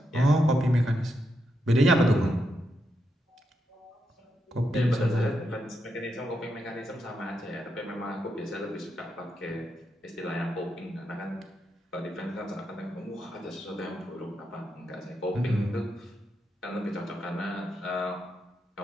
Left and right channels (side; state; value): both; normal; correlation 0.83